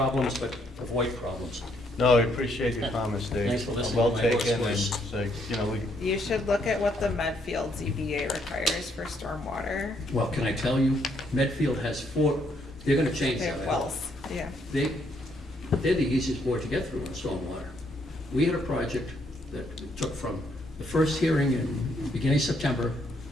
but avoid problems. No, I appreciate your comments, Dave. Thanks for listening Well to my taken, and voice. say, You should look at what the Medfield ZBA requires for stormwater. Well, can I tell you, Medfield has 4, they're gonna change They that. have I hope. wells, yeah. They're the easiest board to get through on stormwater. We had a project that took from the first hearing in beginning of September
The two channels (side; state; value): both; normal; correlation 0.72